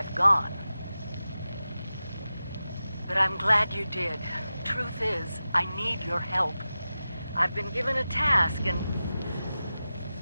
gone. But I'm glad you did. Truth is, I need your help. I've been given a task and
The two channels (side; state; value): both; inverted; correlation -0.93